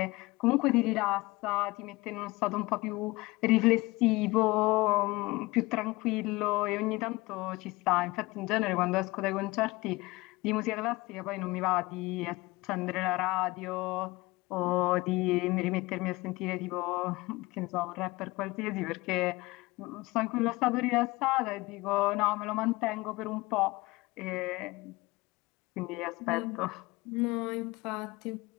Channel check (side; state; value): right; quieter; 21.8 dB